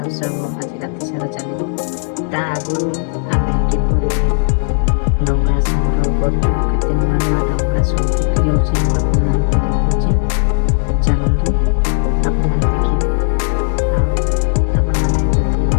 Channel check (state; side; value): silent; right; digital silence